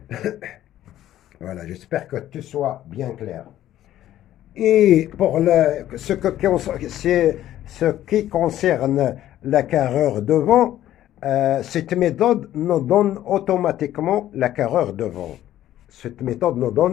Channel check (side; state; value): right; quieter; 12.8 dB